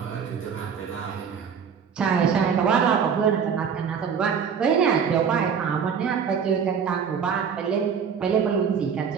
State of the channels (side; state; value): left; quieter; 6.9 dB